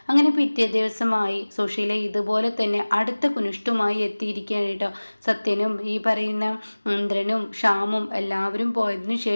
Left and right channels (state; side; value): inverted; both; correlation -1.00